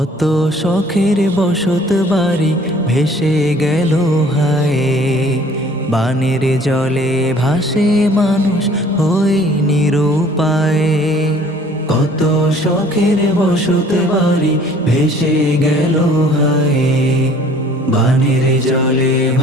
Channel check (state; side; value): normal; both; correlation 0.54